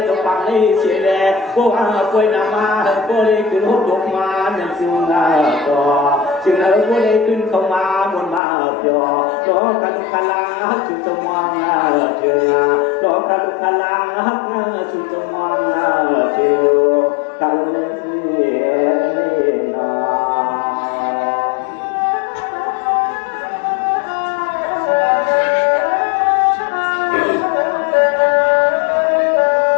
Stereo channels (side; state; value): right; drops out; at 8.4 s